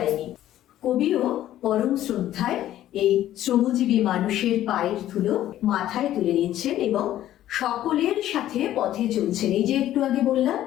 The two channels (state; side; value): quieter; right; 12.9 dB